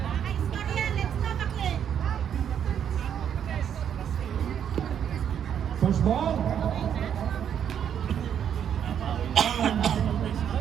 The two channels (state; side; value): quieter; left; 8.8 dB